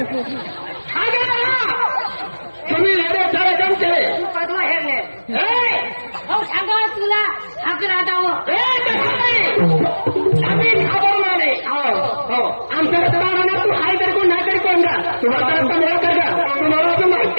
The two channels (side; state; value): both; inverted; correlation -1.00